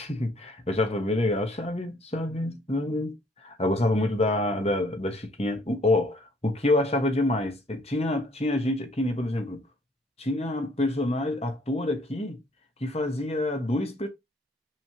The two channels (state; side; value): normal; both; correlation 0.62